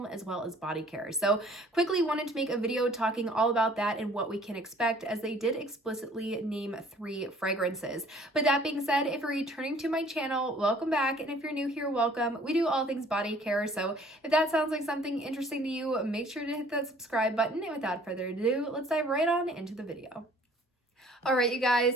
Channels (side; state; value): both; normal; correlation 0.55